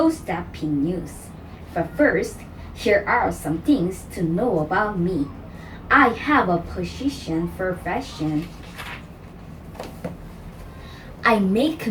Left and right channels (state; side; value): identical; both; correlation 1.00